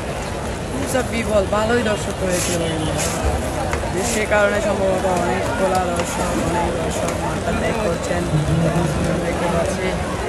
বিবল ভালোই দর্শক হয়েছিল, কিন্তু বৃষ্টির কারণে সম্ভবত অনেক খোলা দর্শক, অনেক দর্শক মাঠটা ত্যাগ করছেন দেখতে পাচ্ছি।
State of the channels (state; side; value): identical; both; correlation 1.00